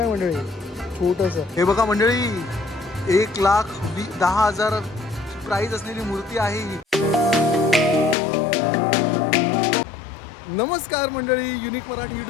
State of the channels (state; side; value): drops out; right; at 8.2 s